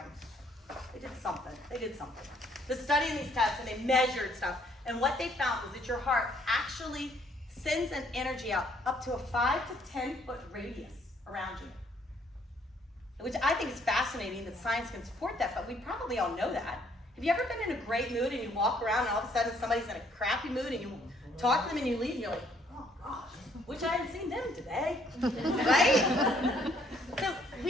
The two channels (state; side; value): normal; both; correlation 0.65